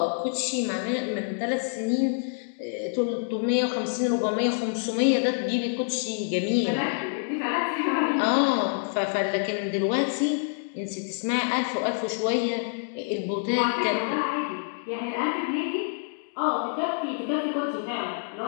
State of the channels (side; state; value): right; silent; digital silence